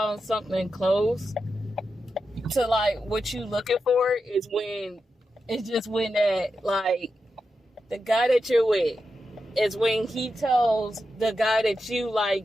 something close to like what you looking for is when it's just when that like the guy that you're with is when he tells the guy that you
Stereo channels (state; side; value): normal; both; correlation 0.89